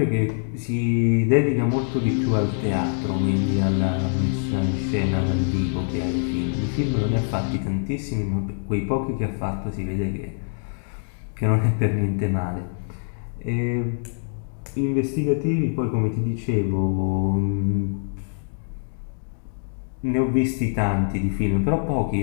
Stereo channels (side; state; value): right; silent; digital silence